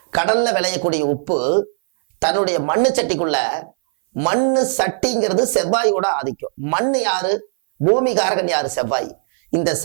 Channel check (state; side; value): silent; left; 58 dB below the other